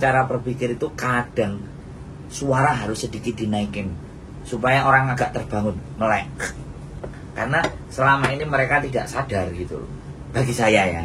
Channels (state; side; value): identical; both; correlation 1.00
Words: berpikir itu kadang suara harus sedikit dinaikin supaya orang agak terbangun, melek. Karena selama ini mereka tidak sadar gitu loh. Bagi saya